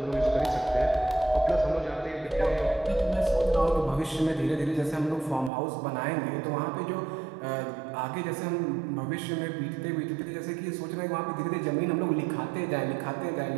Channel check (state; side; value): drops out; left; at 5.5 s